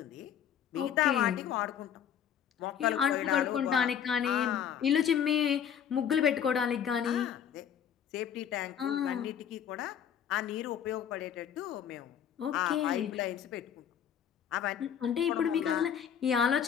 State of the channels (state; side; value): quieter; right; 8.8 dB